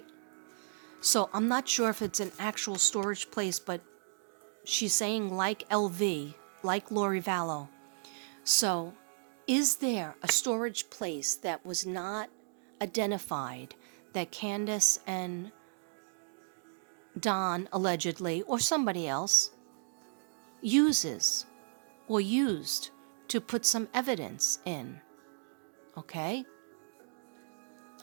So I'm not sure if it's an actual storage place, but she's saying like LV, like Lori Vallow. So is there a storage place that was not identified that Candace and Don allegedly, or somebody else, uses or used to put some evidence in? Okay?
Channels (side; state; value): left; silent; digital silence